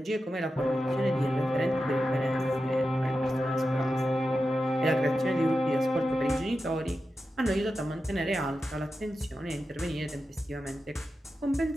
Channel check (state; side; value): normal; both; correlation 0.91